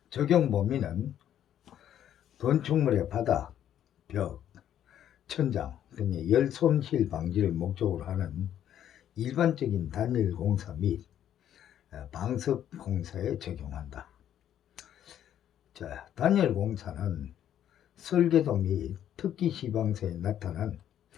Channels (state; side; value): quieter; right; 10.6 dB